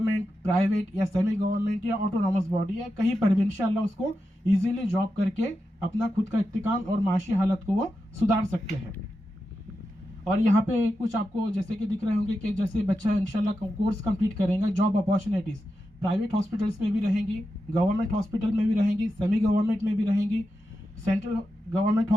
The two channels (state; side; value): normal; both; correlation 0.89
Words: प्राइवेट या सेमी गवर्नमेंट या ऑटोनॉमस बॉडी या कहीं पर भी इंशाल्लाह उसको इजीली जॉब करके अपना खुद का इस्तेकाम और माशी हालत को वो सुधार सकते हैं। और यहाँ पे कुछ आपको जैसे कि दिख रहे होंगे कि जैसे बच्चा इंशाल्लाह कोर्स कंप्लीट करेगा, जॉब अपॉर्चुनिटीज़ प्राइवेट हॉस्पिटल्स में भी रहेंगी, गवर्नमेंट हॉस्पिटल में भी रहेंगी, सेमी गवर्नमेंट में भी रहेंगी, central government